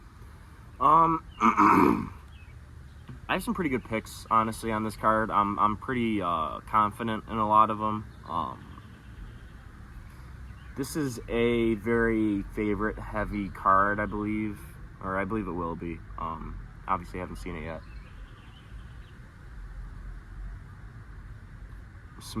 I have some pretty good picks, honestly, on this card. I'm pretty confident in a lot of them. This is a very favorite-heavy card, I believe, or I believe it will be. Obviously, I haven't seen it yet.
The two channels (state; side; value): identical; both; correlation 1.00